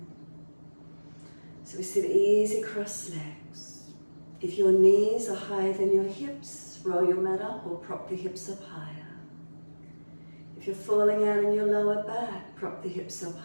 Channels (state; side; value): inverted; both; correlation -1.00